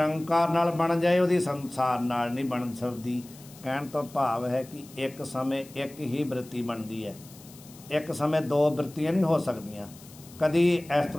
ਨਾਲ ਬਣ ਜਾਏ ਉਹਦੀ ਸੰਸਾਰ ਨਾਲ ਨਹੀਂ ਬਣ ਸਕਦੀ। ਕਹਿਣ ਤੋਂ ਭਾਵ ਹੈ ਕਿ ਇੱਕ ਸਮੇਂ ਇੱਕ ਹੀ ਬ੍ਰਿਤੀ ਬਣਦੀ ਹੈ, ਇੱਕ ਸਮੇਂ ਦੋ ਬ੍ਰਿਤੀਆਂ ਨਹੀਂ ਹੋ ਸਕਦੀਆਂ। ਕਦੀ ਇਸ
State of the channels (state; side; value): noise; left; hiss, 21 dB below the sound